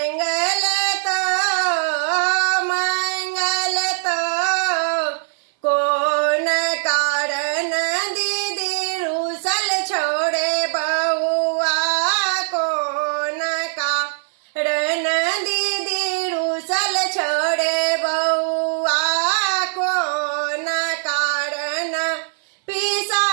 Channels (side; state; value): left; silent; 59 dB below the other